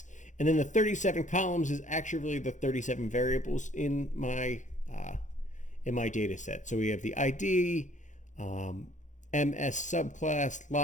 And then the 37 columns is actually the 37 variables in my data set. So we have the ID, MS subclass,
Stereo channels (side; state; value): right; late; 0.36 ms